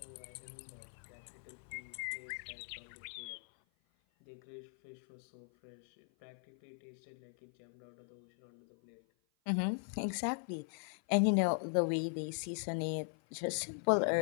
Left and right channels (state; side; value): silent; right; 51 dB below the other